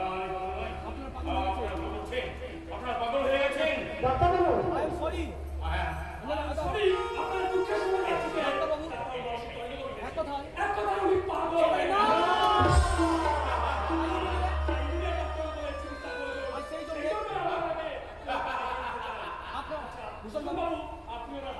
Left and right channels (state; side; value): identical; both; correlation 1.00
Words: আপনারা পাগল হয়ে গেছেন। ডাক্তারবাবু, I am sorry. সরি, আপনার দুঃখের সময় যাচ্ছি। ডাক্তারবাবু, এক কথায় আমি পাগল। না! আর সেই জন্যে আপনার ভূষণ বাবু,